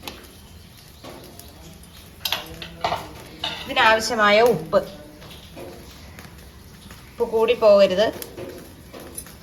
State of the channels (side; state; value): both; identical; correlation 1.00